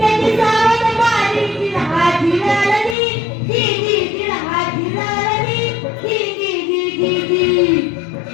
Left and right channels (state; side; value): drops out; right; at 3.0 s